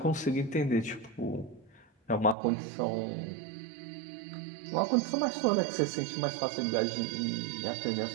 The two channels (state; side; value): drops out; left; at 2.4 s